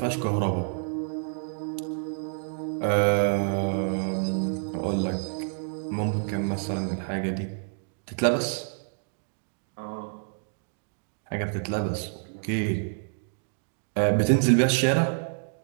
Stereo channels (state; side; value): silent; left; digital silence